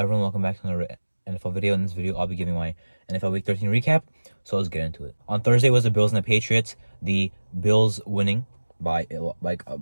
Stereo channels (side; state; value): both; inverted; correlation -1.00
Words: welcome back to another NFL video. In this video, I'll be giving my NFL Week 13 recap, so let's get into it. On Thursday was the Bills and the Patriots. The Bills winning by